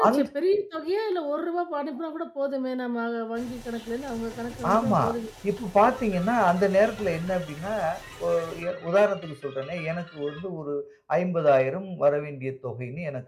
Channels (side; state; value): both; identical; correlation 1.00